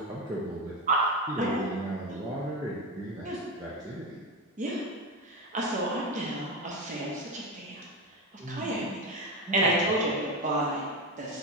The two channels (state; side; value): normal; both; correlation 0.16